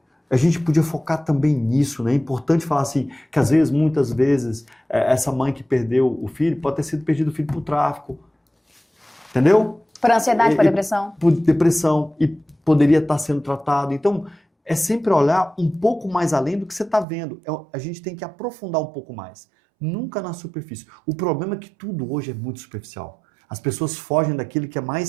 A gente podia focar também nisso, né? É importante falar assim, que às vezes, muitas vezes, essa mãe que perdeu o filho pode ter sido perdido o filho por tráfico. Entendeu? Por ansiedade, por depressão. Por depressão. E poderia estar sendo tratado. Então, é sempre olhar um pouco mais além do que você está vendo. A gente tem que aprofundar um pouco mais. Nunca na superfície. O problema é que tudo hoje é muito superficial. As pessoas fogem daquilo que é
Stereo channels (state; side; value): drops out; left; at 17.1 s